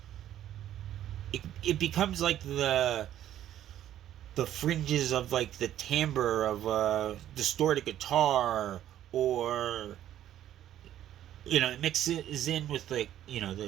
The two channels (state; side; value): quieter; left; 11.8 dB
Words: it becomes like the fringes of like the timbre of a distorted guitar, or it mixes in with like